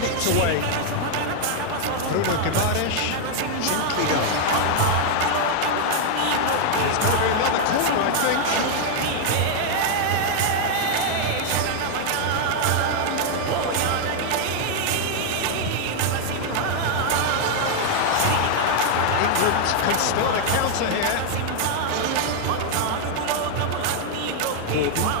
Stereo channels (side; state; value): both; different; correlation 0.00